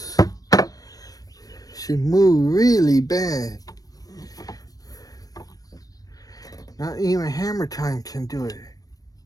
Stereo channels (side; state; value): right; late; 0.18 ms